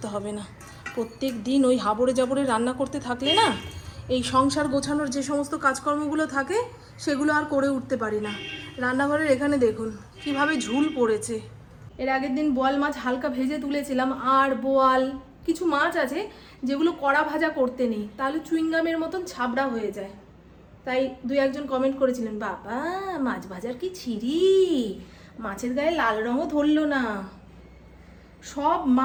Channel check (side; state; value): both; identical; correlation 1.00